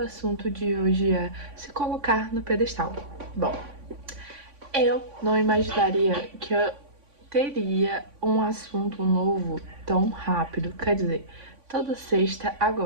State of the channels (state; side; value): late; left; 3.5 ms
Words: assunto de hoje é se colocar no pedestal. Bom, eu não imaginaria que eu teria um assunto novo tão rápido. Quer dizer, toda sexta